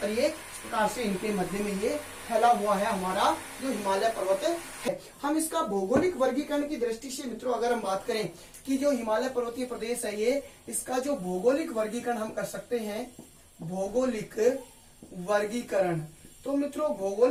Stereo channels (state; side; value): identical; both; correlation 1.00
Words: ये इस प्रकार से इनके मध्य में ये फैला हुआ है हमारा जो हिमालय पर्वत है। हम इसका भौगोलिक वर्गीकरण की दृष्टि से मित्रों अगर हम बात करें कि जो हिमालय पर्वतीय प्रदेश है, ये इसका जो भौगोलिक वर्गीकरण हम कर सकते हैं, भौगोलिक वर्गीकरण। तो मित्रों